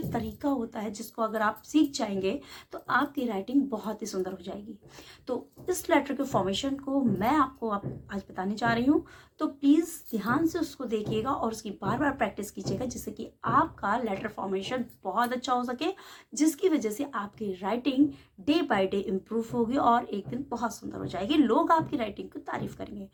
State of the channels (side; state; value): both; identical; correlation 1.00